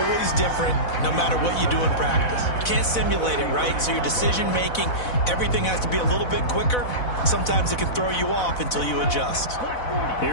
different, no matter what you do in practice. You can't simulate it, right? So your decision-making, everything has to be a little bit quicker. Sometimes it can throw you off until you adjust.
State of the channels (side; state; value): right; late; 4.0 ms